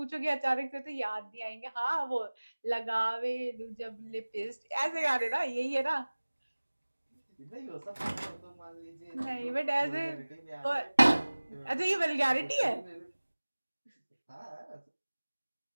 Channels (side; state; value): both; inverted; correlation -1.00